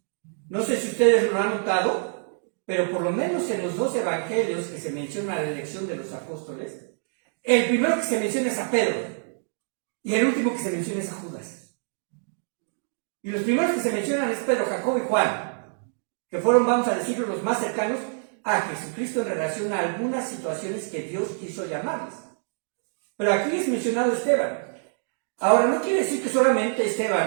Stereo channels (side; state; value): left; silent; digital silence